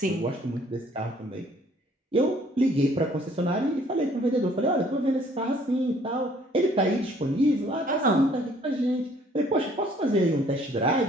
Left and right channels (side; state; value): both; normal; correlation 0.59